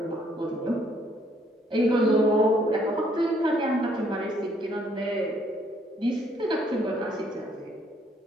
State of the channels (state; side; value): normal; both; correlation 0.67